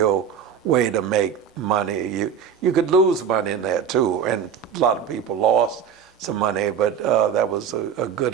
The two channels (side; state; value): left; quieter; 7.5 dB